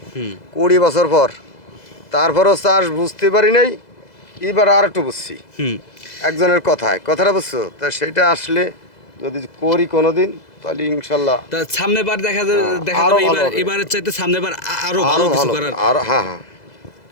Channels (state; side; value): late; right; 2.0 ms